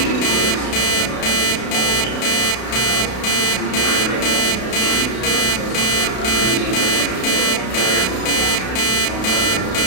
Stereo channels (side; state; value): right; late; 32 ms